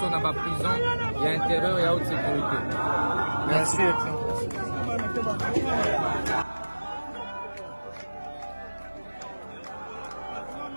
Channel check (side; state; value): both; inverted; correlation -1.00